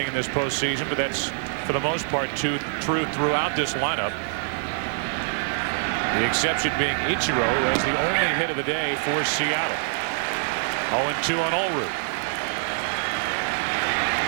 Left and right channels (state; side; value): silent; left; digital silence